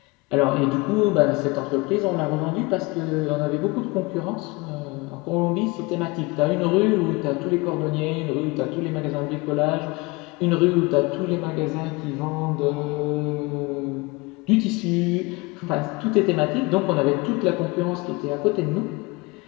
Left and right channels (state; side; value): quieter; right; 24.8 dB